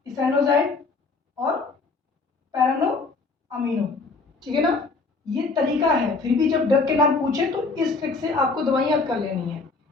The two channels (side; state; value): right; quieter; 3.9 dB